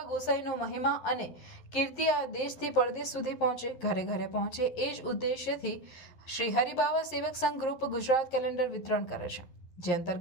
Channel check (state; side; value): late; right; 11 ms